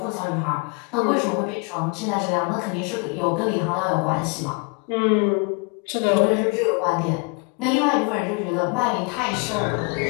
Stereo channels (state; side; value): quieter; right; 31.1 dB